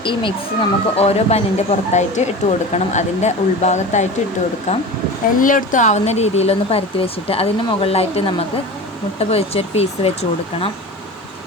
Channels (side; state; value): both; normal; correlation 0.32